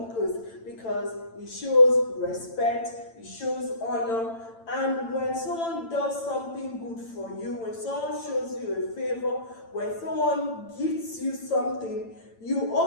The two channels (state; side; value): late; right; 8.9 ms